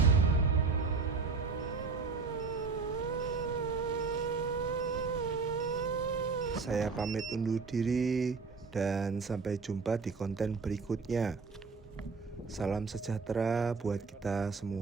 Saya pamit undur diri dan sampai jumpa di konten berikutnya. Salam sejahtera buat kita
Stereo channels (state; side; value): quieter; left; 4.6 dB